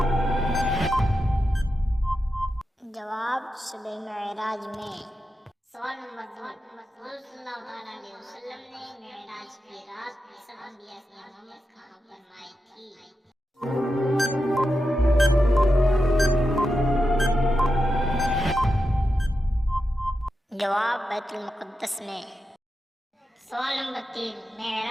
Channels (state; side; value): normal; both; correlation 0.89